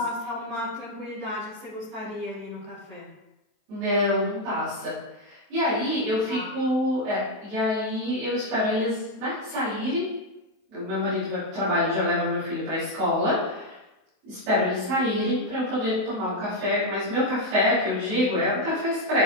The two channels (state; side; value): late; left; 27 ms